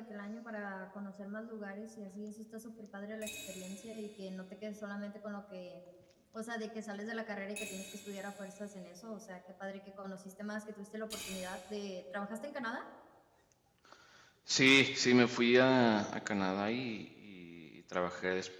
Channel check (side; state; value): both; identical; correlation 1.00